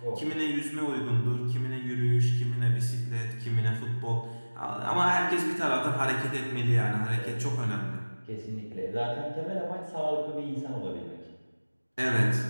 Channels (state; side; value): inverted; both; correlation -1.00